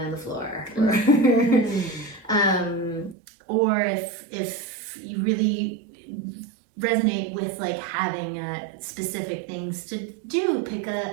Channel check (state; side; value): drops out; left; at 3.2 s